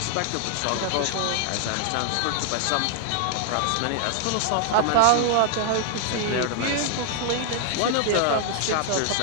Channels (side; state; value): both; different; correlation 0.00